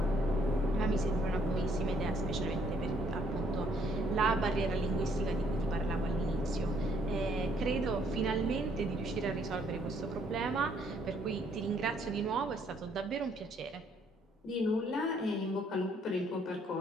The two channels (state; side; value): normal; both; correlation 0.67